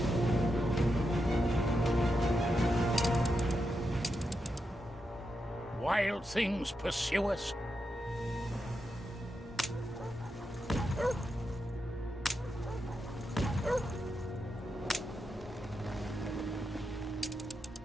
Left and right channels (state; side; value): normal; both; correlation 0.86